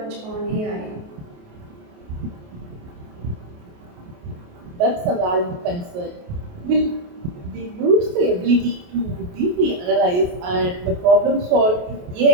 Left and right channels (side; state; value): left; late; 28 ms